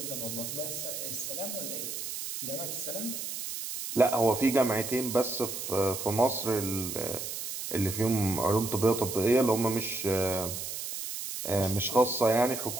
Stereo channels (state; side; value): noise; right; hiss, 6 dB below the sound